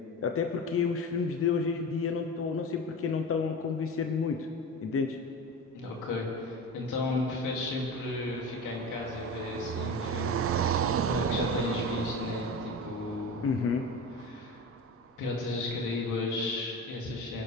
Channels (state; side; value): normal; both; correlation 0.29